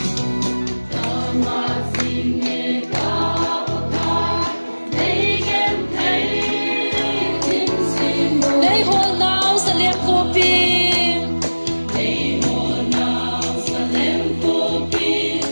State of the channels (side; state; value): both; inverted; correlation -1.00